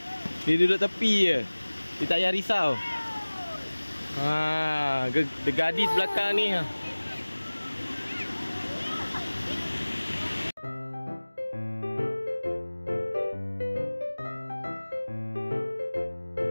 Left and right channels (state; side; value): inverted; both; correlation -1.00